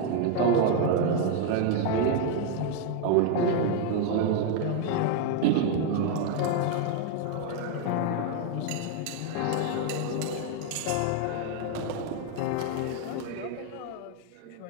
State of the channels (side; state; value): both; different; correlation 0.01